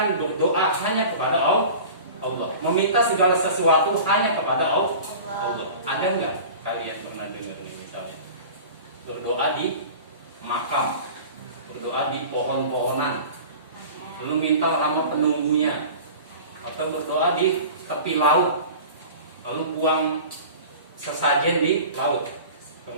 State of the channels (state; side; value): inverted; both; correlation -0.38